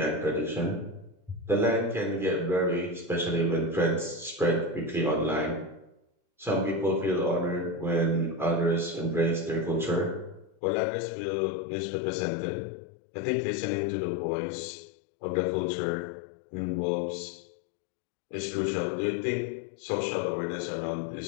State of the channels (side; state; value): right; drops out; at 10.6 s